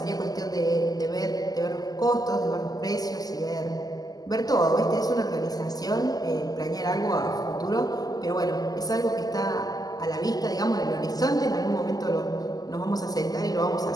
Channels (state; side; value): late; right; 0.18 ms